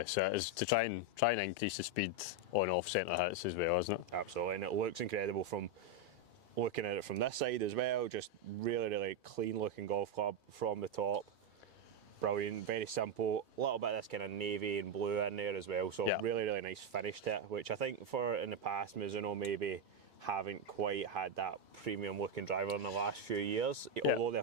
it is to try and increase the speed on off centre hits as well, isn't it? Absolutely, and it looks incredible from looking at it from this side as well. Just really clean looking golf club from the top. Brilliant, very simple. A little bit of this kind of navy and blue in there as well. So really nice finish to it, which I think for in the past Mizuno maybe haven't quite had that premium looking driver in the last few years, although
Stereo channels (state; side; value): normal; both; correlation 0.04